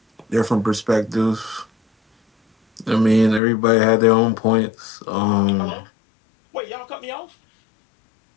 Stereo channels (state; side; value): drops out; right; at 3.4 s